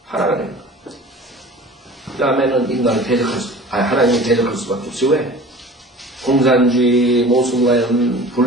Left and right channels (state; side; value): normal; both; correlation 0.42